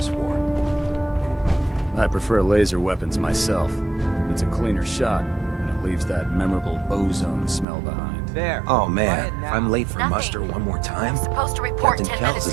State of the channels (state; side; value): drops out; left; at 7.7 s